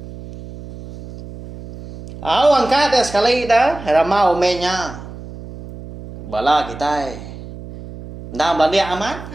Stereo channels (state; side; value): noise; right; hum, 14 dB below the sound